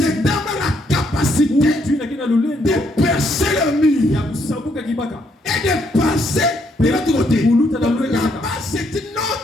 homme a la capacité de percer le mur et de passer de l'autre côté. Là-bas, c'est une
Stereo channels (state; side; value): normal; both; correlation 0.73